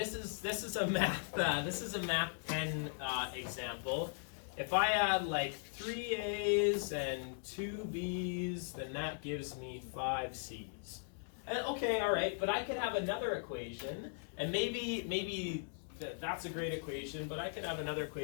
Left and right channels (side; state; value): right; silent; digital silence